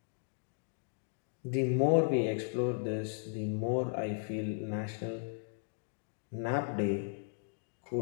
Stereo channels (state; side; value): silent; right; 54 dB below the other